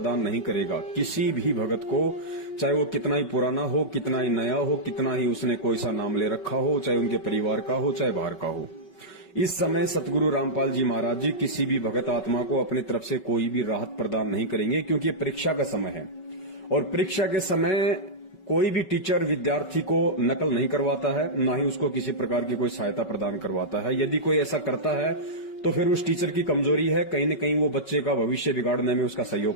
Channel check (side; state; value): right; late; 5.3 ms